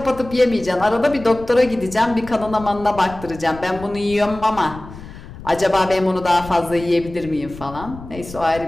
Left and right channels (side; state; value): left; noise; rumble, 15 dB below the sound